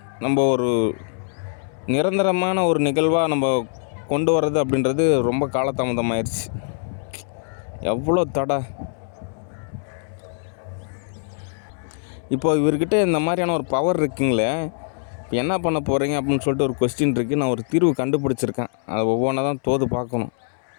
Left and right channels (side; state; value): right; silent; 63 dB below the other